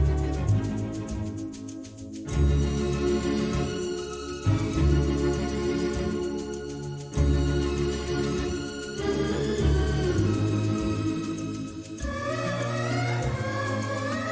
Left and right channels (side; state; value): both; identical; correlation 1.00